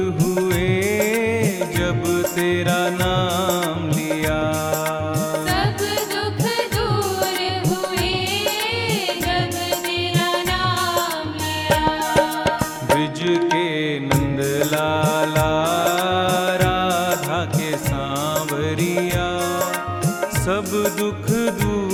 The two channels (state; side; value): identical; both; correlation 1.00